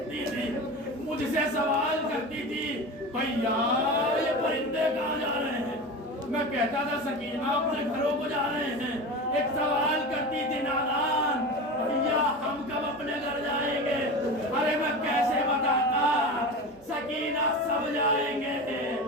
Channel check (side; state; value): right; noise; hum, 29 dB below the sound